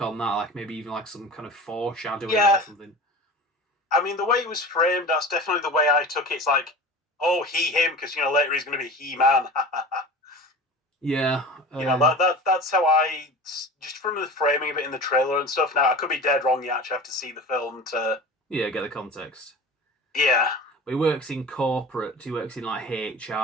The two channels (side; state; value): both; normal; correlation 0.34